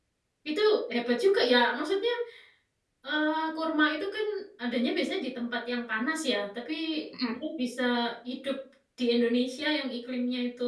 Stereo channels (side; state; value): both; identical; correlation 1.00